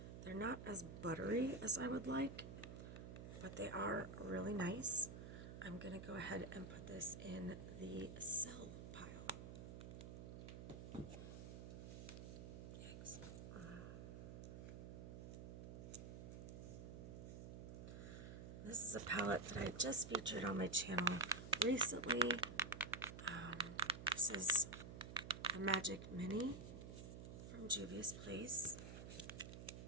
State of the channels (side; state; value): right; noise; hum, 9 dB below the sound